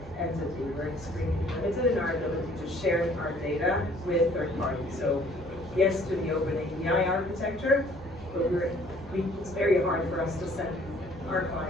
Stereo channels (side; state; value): both; normal; correlation 0.57